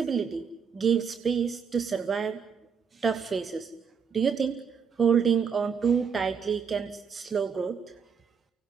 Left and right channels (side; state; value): left; quieter; 6.4 dB